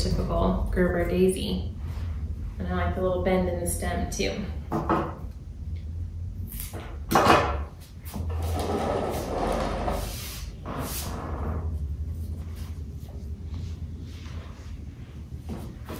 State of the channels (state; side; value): identical; both; correlation 1.00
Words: Gerber daisy. And I like the little bend in the stem too.